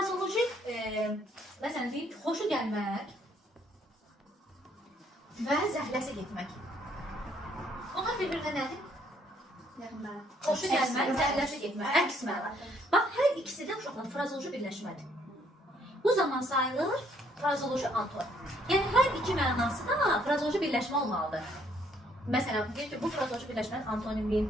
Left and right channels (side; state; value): both; normal; correlation 0.67